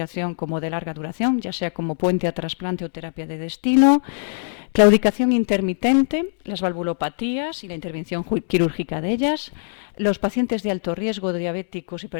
como de larga duración, ya sea como puente a trasplante o terapia de destino. Claudicación intermitente, las valvulopatías y la intervención quirúrgica de ellas, los pacientes de alto riesgo de diabéticos,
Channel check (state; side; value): silent; right; digital silence